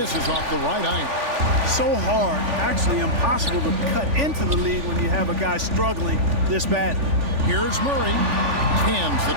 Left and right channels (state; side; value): late; left; 3.4 ms